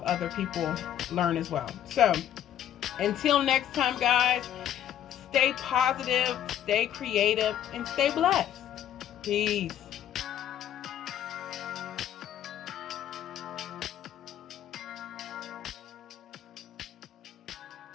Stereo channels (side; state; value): right; quieter; 10.8 dB